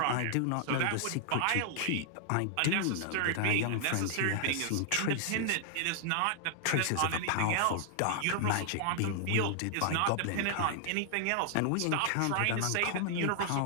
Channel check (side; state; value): both; different; correlation 0.00